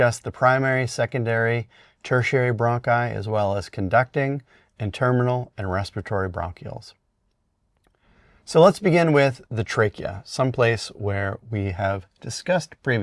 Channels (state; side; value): identical; both; correlation 1.00